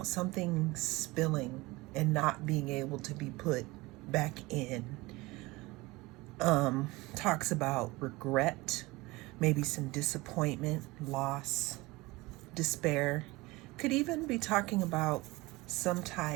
something spilling and not being able to be put back in. Talks about regret, maybe some disappointment, loss, despair. Could even be talking about some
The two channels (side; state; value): left; quieter; 22.0 dB